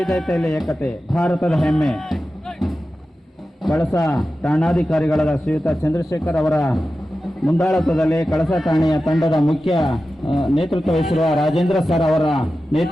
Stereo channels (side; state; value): both; normal; correlation 0.93